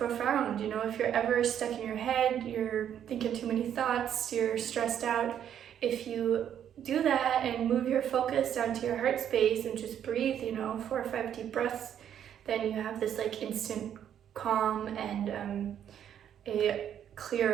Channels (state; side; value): quieter; left; 9.6 dB